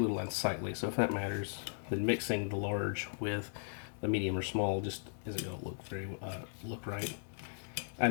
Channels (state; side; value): silent; right; digital silence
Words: unsightly. So if that matters, then mixing the large with the medium or small just isn't going to look right. I